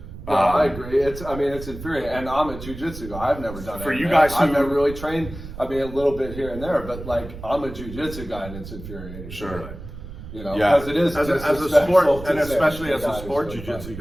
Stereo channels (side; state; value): right; noise; rumble, 12 dB below the sound